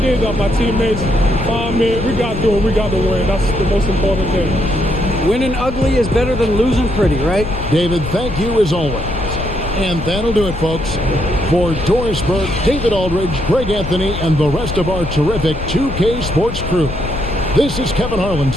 that. My teammates found me. We got to do it. We got to win. That's the most important thing. Winning ugly is better than losing pretty, right? David, thank you as always. And that'll do it, folks. For Doris Burke, David Aldridge, Greg Anthony, and the rest of our terrific 2K Sports crew, this is Kevin Harlan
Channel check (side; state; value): left; noise; rumble, 7 dB below the sound